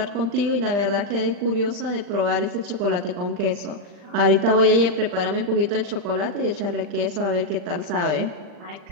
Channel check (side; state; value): left; late; 40 ms